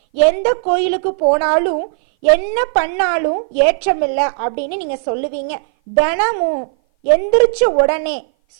எந்த கோயிலுக்கு போனாலும் என்ன பண்ணாலும் ஏற்றமில்லை அப்படின்னு நீங்க சொல்லுவீங்க. தினமும் எந்திரிச்ச உடனே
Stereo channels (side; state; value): left; silent; 58 dB below the other